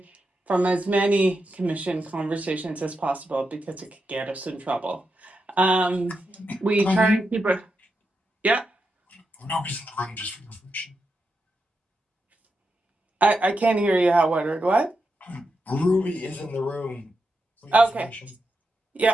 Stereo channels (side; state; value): both; normal; correlation 0.86